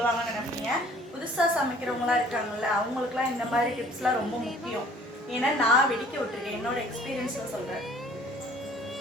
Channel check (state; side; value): normal; both; correlation 0.54